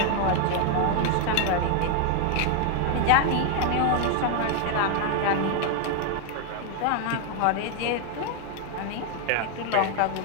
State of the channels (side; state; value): both; different; correlation 0.01